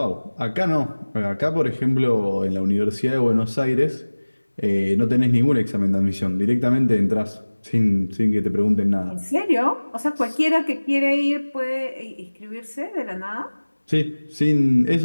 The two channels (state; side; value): inverted; both; correlation -1.00